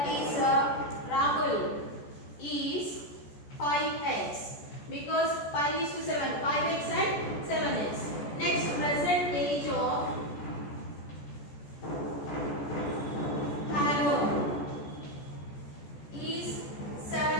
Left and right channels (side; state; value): right; late; 14 ms